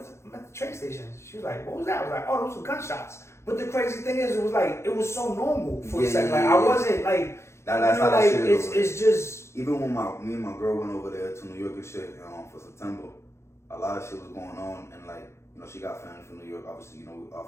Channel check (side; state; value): right; late; 0.13 ms